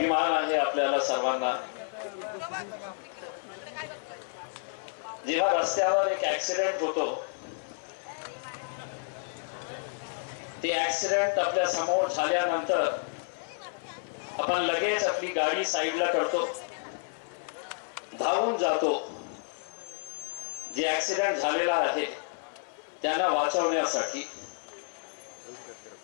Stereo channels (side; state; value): right; silent; 58 dB below the other